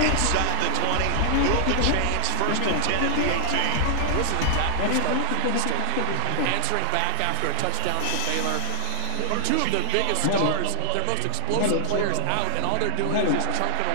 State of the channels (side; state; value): both; different; correlation -0.01